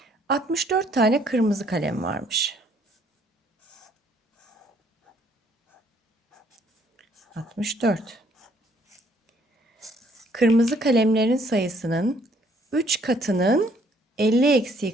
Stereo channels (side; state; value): both; normal; correlation 0.65